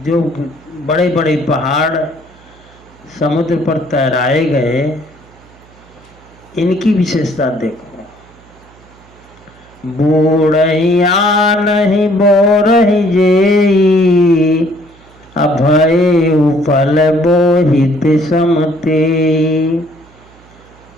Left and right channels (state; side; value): noise; right; hum, 27 dB below the sound